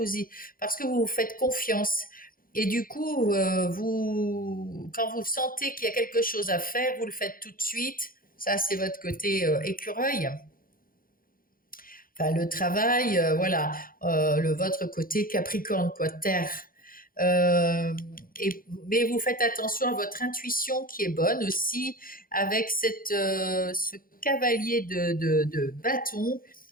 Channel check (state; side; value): late; right; 0.41 ms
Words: vous faites confiance. Et du coup, quand vous sentez qu'il y a quelque chose à faire, vous le faites tout de suite. Ça, c'est votre côté écureuil. Enfin, le travail, voilà, votre côté Capricorne, quoi, terre. Euh, mais vous faites attention à votre intuition qui est bonne aussi, avec ce cavalier de bâton.